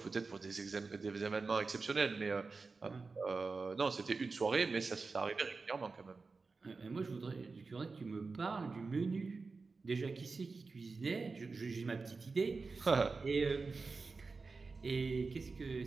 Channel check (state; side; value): quieter; left; 4.2 dB